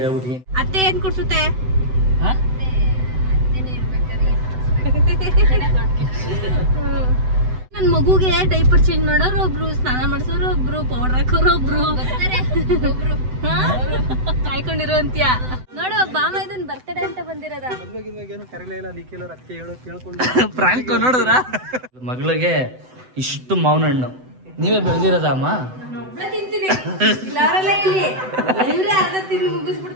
ಹೇಳ್ಬಿಟ್ಟು. ಅತ್ತೆ ಏನ್ ಕೊಡ್ಸುತ್ತೆ? ನನ್ ಮಗುಗೆ ಡೈಪರ್ ಚೇಂಜ್ ಮಾಡೋರು ಒಬ್ರು, ಸ್ನಾನ ಮಾಡಿಸೋರು ಒಬ್ರು, ಪೌಡರ್ ಹಾಕೋರು ಒಬ್ರು, ಕಾಯ್ಕೊಂಡಿರೋ ಅಂತ್ಯ. ನೋಡು ಬಾಮ ಇದನ್ ಬರ್ತಡೆ ಅಂತ ಬಂದಿರೋದ. ಪ್ರಾಂಕ್ ನೋಡಿದ್ರ ಮಗಳಿಗೆ ಇಷ್ಟು ಮಾವಿನ ಹಣ್ಣು ನೀವೇ ಬೆಳೆದಿರೋದ ಅಮ್ಮ? ತಿಂತೀನಿ ಇಲ್ಲಿ ಅರ್ಧ ತಿಂದು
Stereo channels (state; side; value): late; left; 7.9 ms